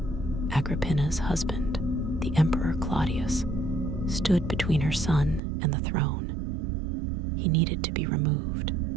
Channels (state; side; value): drops out; left; at 5.4 s